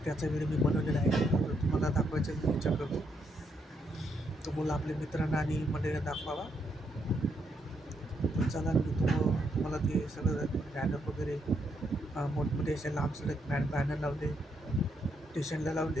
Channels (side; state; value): both; normal; correlation 0.77